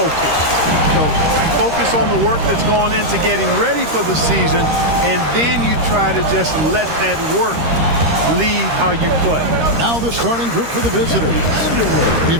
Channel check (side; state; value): left; late; 13 ms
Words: So you focus on the work that's gone into getting ready for the season, and then you try to just let that work lead how you play. Now the starting group for the visitors.